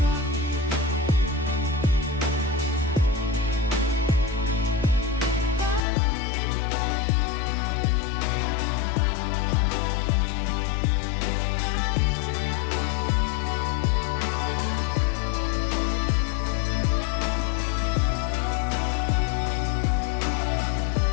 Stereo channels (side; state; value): right; drops out; at 5.8 s